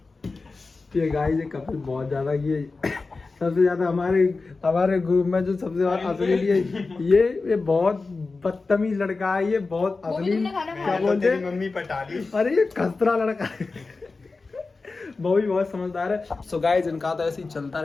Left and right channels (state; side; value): quieter; right; 3.9 dB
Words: ये गाइस ये कपिल बहुत ज्यादा, ये सबसे ज्यादा हमारे ग्रुप में जो सबसे ज्यादा असली ये बहुत बदतमीज लड़का है। ये बहुत वो भी असली, तुमने खाना क्या खाया? बोलते तेरी हैं? मम्मी पटा ली। अरे ये खसरा लड़का है। वो भी बहुत समझदार है। सो गाइस इनका तो ऐसे ही चलता